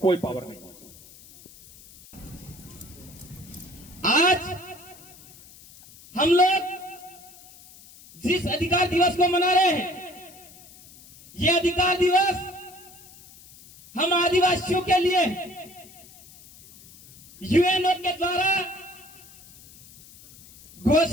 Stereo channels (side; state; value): left; noise; hiss, 22 dB below the sound